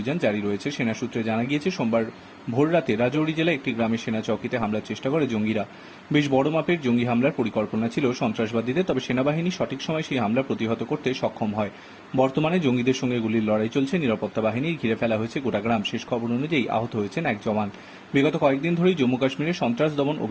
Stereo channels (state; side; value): identical; both; correlation 1.00